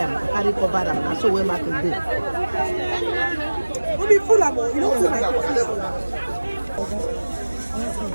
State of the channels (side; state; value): both; inverted; correlation -1.00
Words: carry cover them, and so where market do. We'll be full of more. You don't feel like